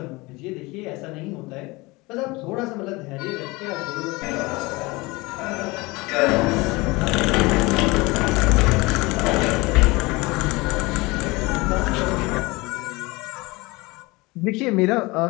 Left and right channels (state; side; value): quieter; right; 23.4 dB